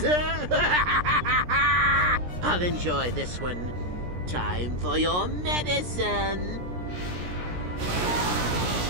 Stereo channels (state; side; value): late; left; 17 ms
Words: I'll enjoy this one. Time for your medicine.